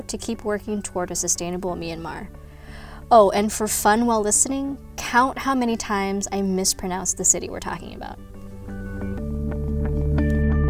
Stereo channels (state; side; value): identical; both; correlation 1.00